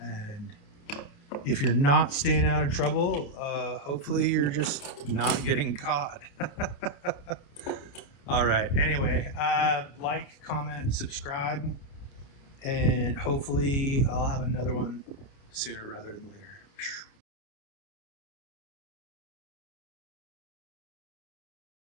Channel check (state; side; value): late; right; 29 ms